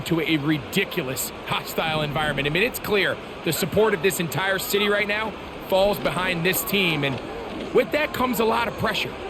a ridiculous hostile environment. I mean, it's clear the support of this entire city right now falls behind this team, and with that comes a lot of pressure.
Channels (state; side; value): identical; both; correlation 1.00